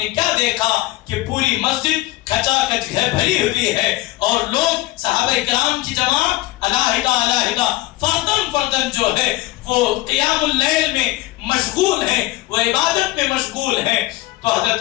کیا دیکھا کہ پوری مسجد کھچا کچ بھری ہوئی ہے اور لوگ صحابہ کرام کی جماعت علیحدہ فردن جو ہے وہ قیام اللیل میں مشغول ہے، وہ عبادت میں مشغول ہے۔ تو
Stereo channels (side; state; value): right; quieter; 18.3 dB